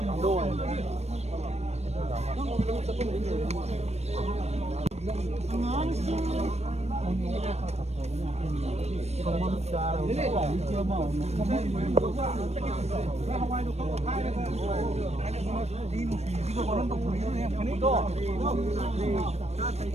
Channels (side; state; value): left; late; 0.31 ms